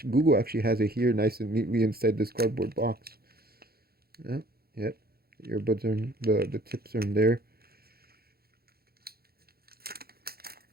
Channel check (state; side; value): late; left; 0.45 ms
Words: Google actually has it here, nice and neatly inside this cardboard box. Yeah, yep. The earbuds are in, the tips are in there,